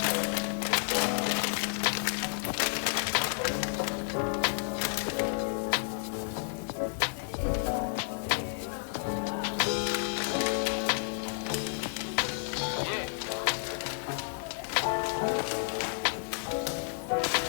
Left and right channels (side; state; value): right; silent; digital silence